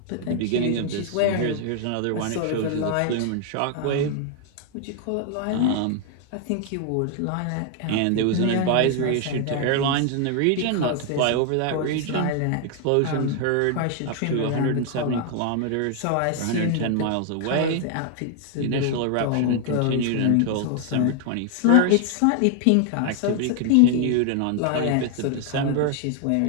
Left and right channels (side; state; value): both; different; correlation 0.00